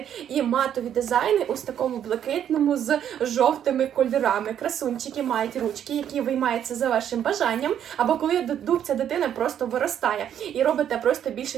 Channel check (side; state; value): left; quieter; 9.7 dB